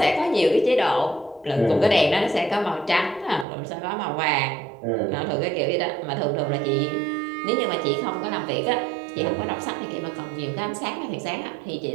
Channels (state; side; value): drops out; left; at 3.5 s